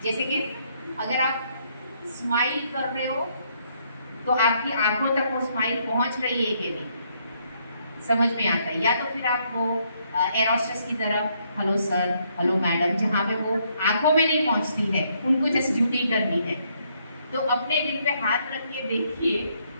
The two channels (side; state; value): both; inverted; correlation -0.72